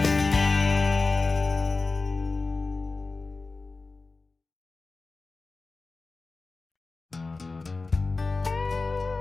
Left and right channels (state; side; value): quieter; right; 3.8 dB